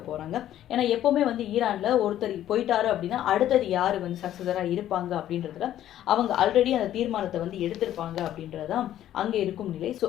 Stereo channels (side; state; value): right; quieter; 12.1 dB